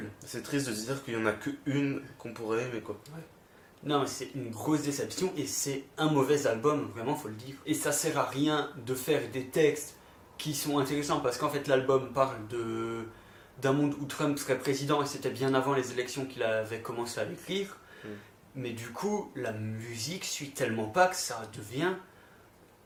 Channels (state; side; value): identical; both; correlation 1.00